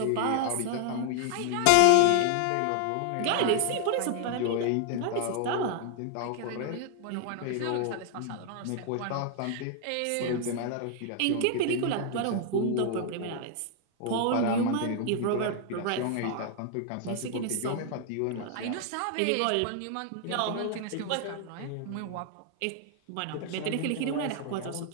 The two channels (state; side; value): different; both; correlation 0.00